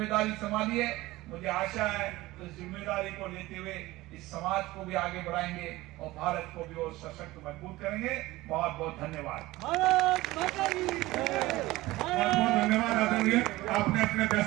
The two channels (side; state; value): left; quieter; 18.6 dB